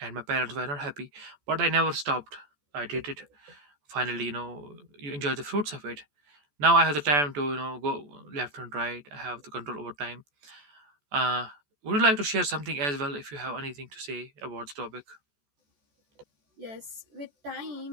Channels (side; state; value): left; late; 14 ms